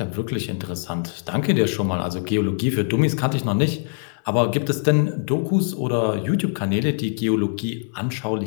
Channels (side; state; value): right; silent; digital silence